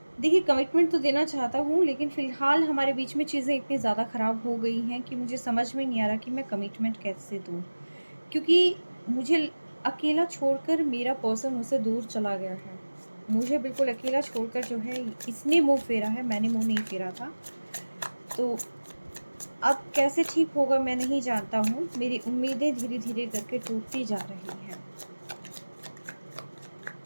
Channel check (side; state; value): both; inverted; correlation -1.00